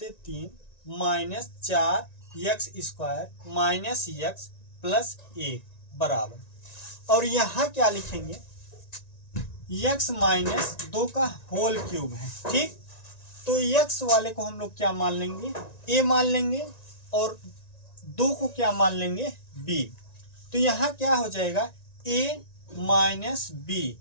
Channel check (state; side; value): late; right; 1.9 ms